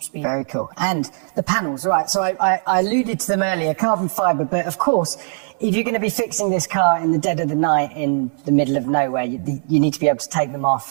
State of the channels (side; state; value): left; silent; 66 dB below the other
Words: speed. Very cool. And the panels, right? So I alluded to them earlier, carbon fibre, but of course, if you're going to be fixing this car in the dead of the night in the middle of nowhere, you need to be able to take them